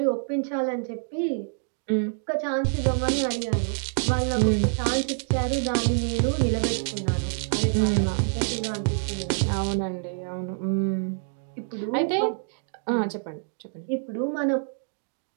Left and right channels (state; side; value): silent; left; digital silence